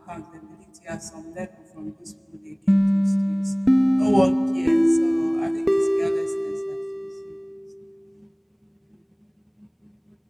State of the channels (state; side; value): identical; both; correlation 1.00